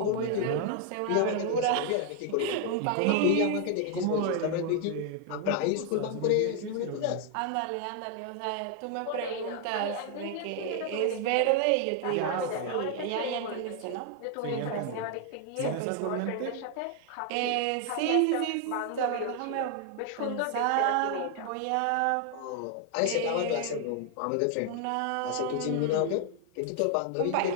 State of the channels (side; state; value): both; different; correlation 0.00